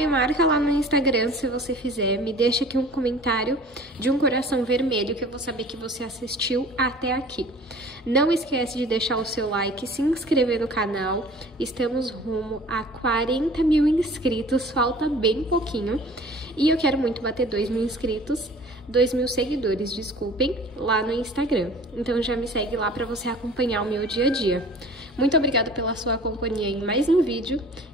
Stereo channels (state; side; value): normal; both; correlation 0.46